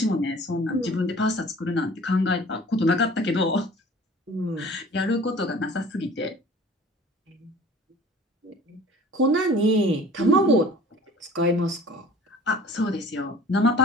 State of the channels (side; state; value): both; normal; correlation 0.47